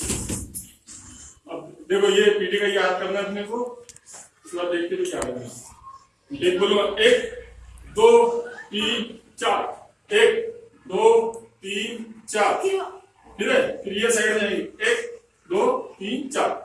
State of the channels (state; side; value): identical; both; correlation 1.00